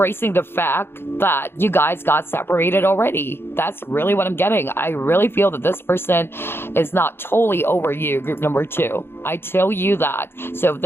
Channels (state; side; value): late; right; 0.11 ms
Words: the fact that you guys got separated already. That's really what I'm getting. I really feel that this person is not totally over you, group number 2. I tell you that. So if